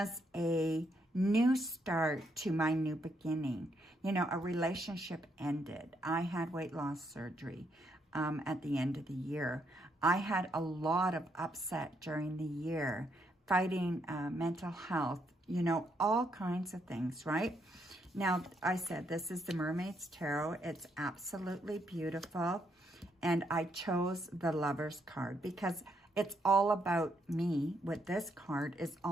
a, new start to my new beginning. You know, a relationship ended. I had weight loss surgery at the end of the year. I had a lot of upset during the year, fighting mental health, you know, all kinds of things, right? Now, I said this is the Mermaid's Tarot. It's absolutely beautiful. And I chose the Lover's card because it's all about me. With this card, it's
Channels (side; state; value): both; normal; correlation 0.75